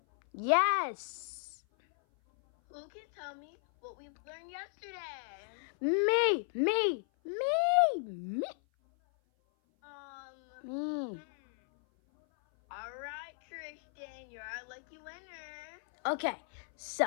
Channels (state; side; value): silent; right; 54 dB below the other